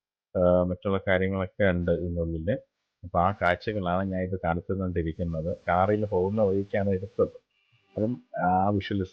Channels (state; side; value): identical; both; correlation 1.00